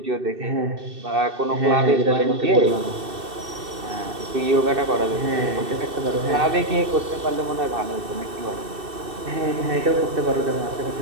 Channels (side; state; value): left; late; 2.6 ms